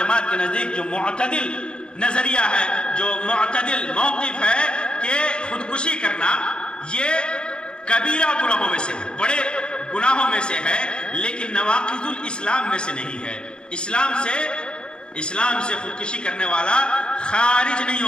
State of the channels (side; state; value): right; late; 0.051 ms